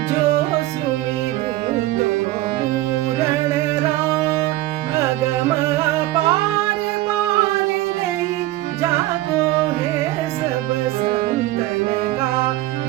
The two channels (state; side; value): quieter; left; 16.9 dB